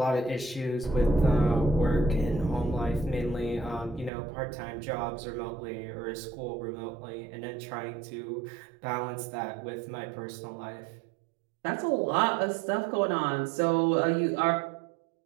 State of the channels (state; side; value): drops out; left; at 4.1 s